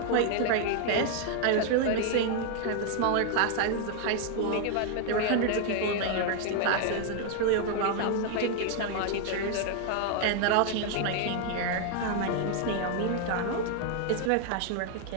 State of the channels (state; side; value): different; both; correlation 0.00